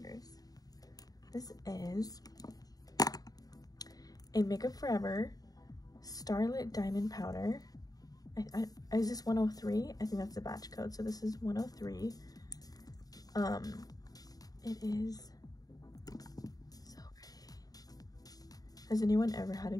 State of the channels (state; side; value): late; right; 0.18 ms